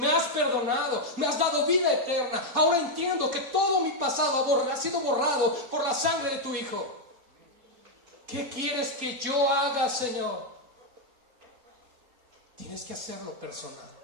has perdonado, me has dado vida eterna. Ahora entiendo que todo mi pasado ha sido borrado por la sangre de tu Hijo. ¿Qué quieres que yo haga, Señor? Tienes que hacerlo personal.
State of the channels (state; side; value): late; left; 4.6 ms